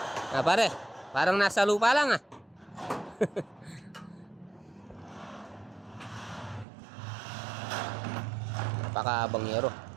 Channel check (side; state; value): left; drops out; at 6.7 s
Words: Pare, parang nasa lupa lang, ah. Napakahabang yero.